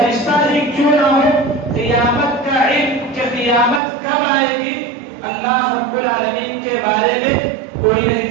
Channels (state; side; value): drops out; left; at 3.8 s